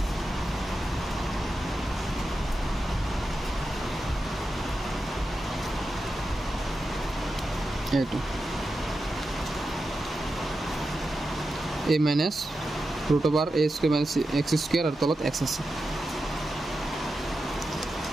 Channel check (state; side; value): normal; both; correlation 0.90